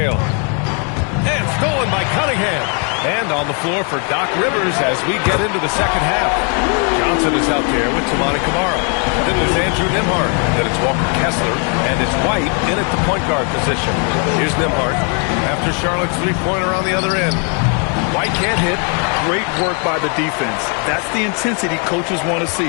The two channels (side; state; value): right; quieter; 38.6 dB